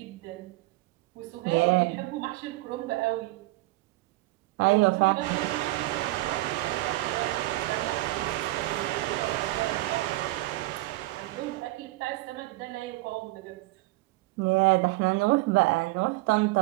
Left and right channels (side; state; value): left; quieter; 20.2 dB